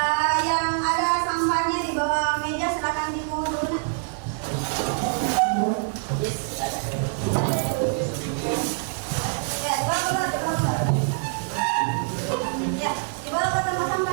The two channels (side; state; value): left; silent; 62 dB below the other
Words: Yang ada sampahnya di bawah meja silakan dipungut dulu. Ya, dibawa keluar. Ya, dibawa ke tempat